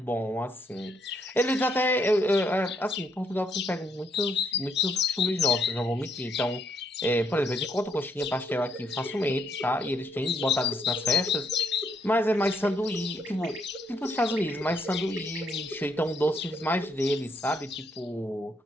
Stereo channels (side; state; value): both; normal; correlation 0.74